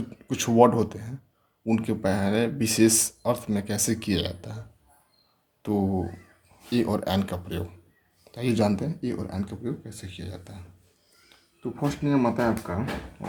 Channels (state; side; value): identical; both; correlation 1.00